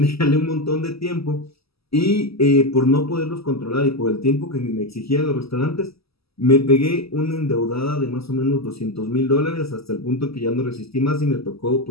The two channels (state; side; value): late; right; 0.76 ms